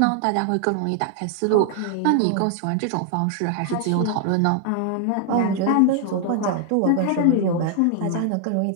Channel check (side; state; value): both; different; correlation 0.00